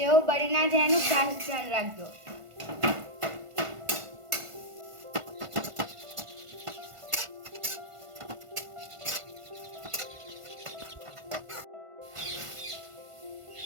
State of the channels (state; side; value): late; left; 1.5 ms